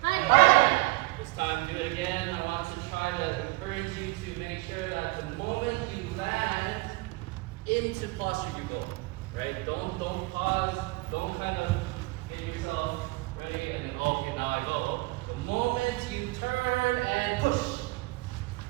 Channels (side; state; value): left; quieter; 22.8 dB